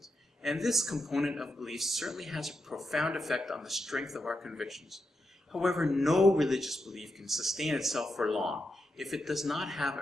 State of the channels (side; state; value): both; normal; correlation 0.86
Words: and this component of belief certainly has a profound effect on the strength of our convictions. However, no religious belief can sustain itself for long if it does not have